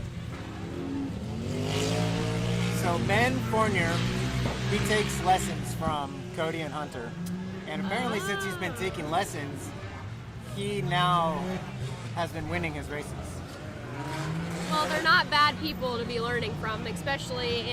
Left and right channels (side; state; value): both; identical; correlation 1.00